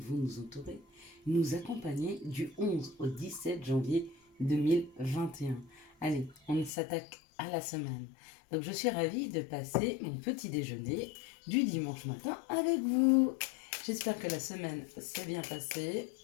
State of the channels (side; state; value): right; drops out; at 6.7 s